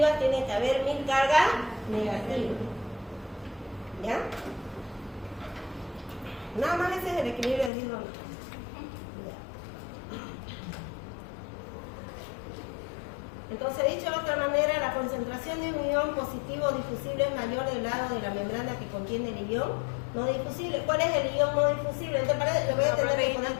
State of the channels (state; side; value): drops out; right; at 7.7 s